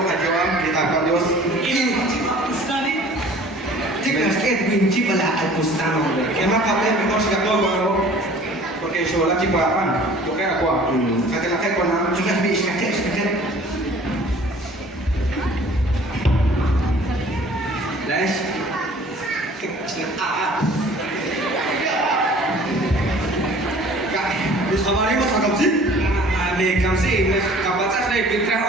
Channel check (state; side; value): normal; both; correlation 0.49